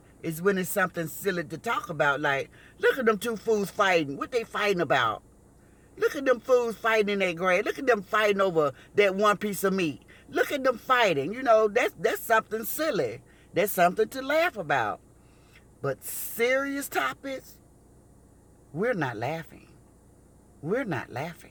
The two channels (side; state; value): both; identical; correlation 1.00